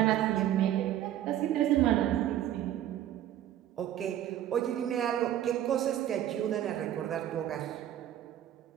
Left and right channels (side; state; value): left; quieter; 11.9 dB